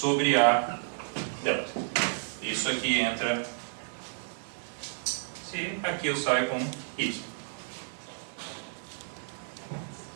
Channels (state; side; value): silent; left; digital silence